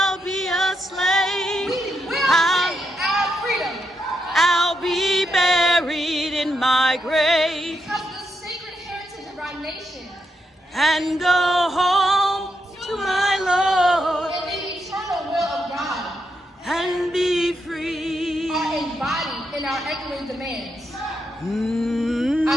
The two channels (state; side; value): normal; both; correlation 0.82